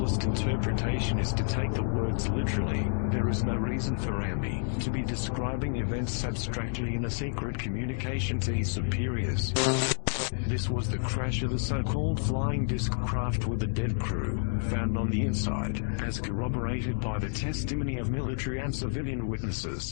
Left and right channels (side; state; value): right; silent; digital silence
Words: interpretation is to take the words literally. There is no reason for Rami to be describing events abstractly in a secret communication to his superiors. This was the crash of the so-called flying disc craft with a dead crew, found on the inside, as corroborated by the testimony of military and civilian